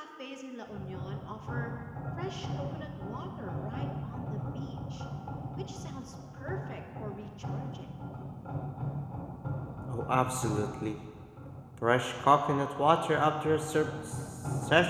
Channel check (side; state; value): both; identical; correlation 1.00